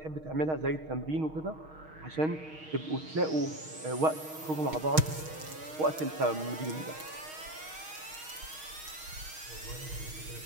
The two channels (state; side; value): late; left; 6.4 ms